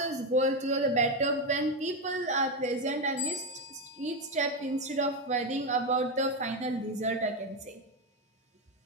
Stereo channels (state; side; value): normal; both; correlation 0.10